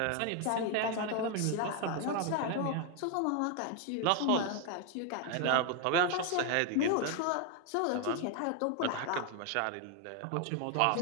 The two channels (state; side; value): different; both; correlation 0.01